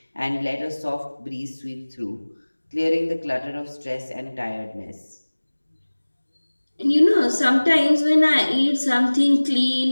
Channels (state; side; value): inverted; both; correlation -1.00